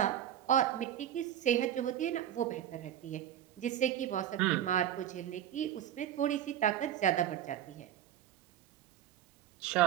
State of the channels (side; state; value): left; quieter; 11.0 dB